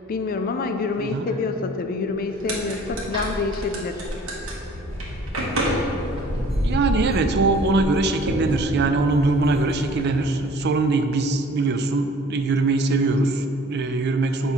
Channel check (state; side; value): normal; both; correlation 0.50